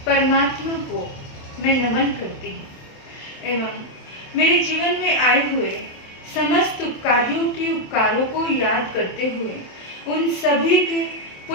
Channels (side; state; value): right; late; 27 ms